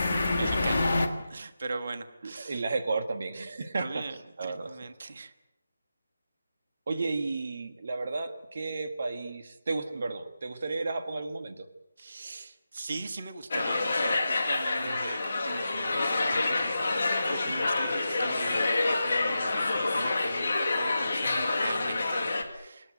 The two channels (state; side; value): inverted; both; correlation -0.89